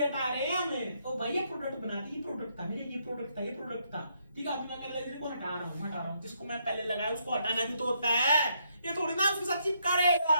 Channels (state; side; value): inverted; both; correlation -0.74